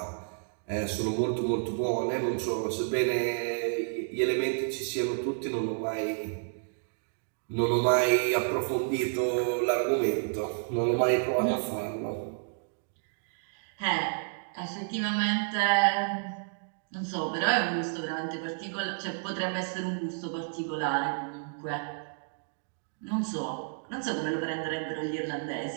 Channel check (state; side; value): silent; left; digital silence